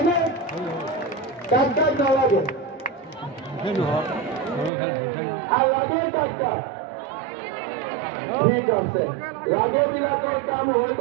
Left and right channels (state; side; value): drops out; left; at 4.7 s